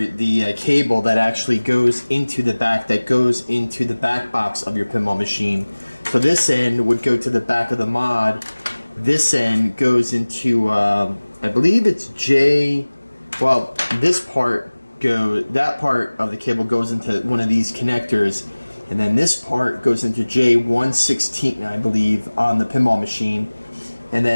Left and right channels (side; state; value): both; inverted; correlation -1.00